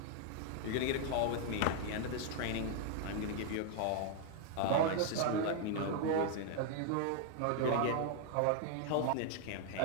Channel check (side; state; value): both; different; correlation 0.00